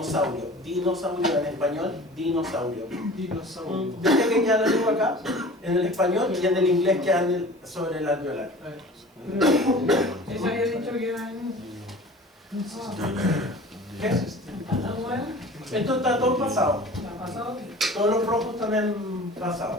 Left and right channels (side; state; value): both; normal; correlation 0.42